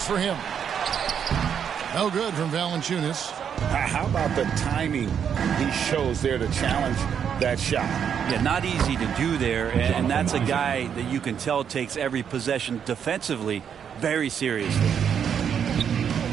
for him. No good from Valanciunas. How about the timing he shows there to challenge that shot? Yeah, not easy to do there, and that's a guy that you can tell takes every possession defensively very seriously.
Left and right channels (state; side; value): quieter; left; 8.0 dB